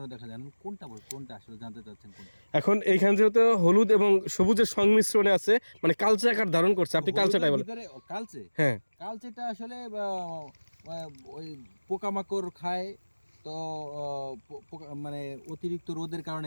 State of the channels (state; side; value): inverted; both; correlation -1.00